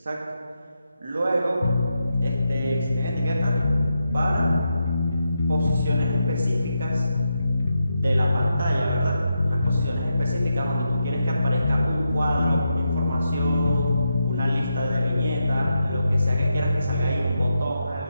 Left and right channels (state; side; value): inverted; both; correlation -0.85